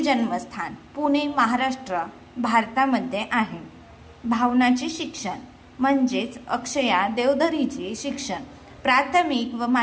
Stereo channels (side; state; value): both; identical; correlation 1.00